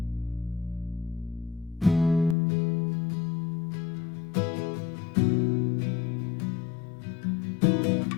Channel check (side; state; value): right; drops out; at 2.4 s